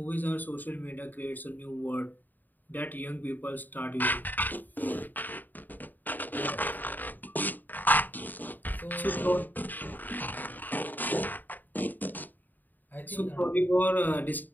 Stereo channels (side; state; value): right; late; 0.088 ms